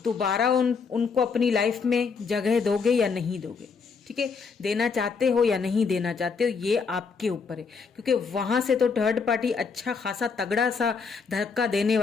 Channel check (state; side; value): quieter; right; 5.3 dB